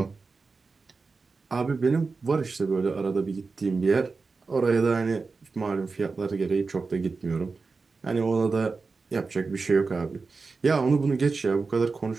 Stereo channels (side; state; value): left; quieter; 4.3 dB